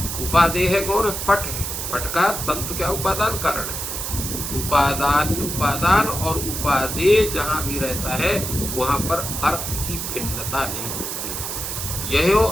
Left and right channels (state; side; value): noise; right; hiss, 4 dB below the sound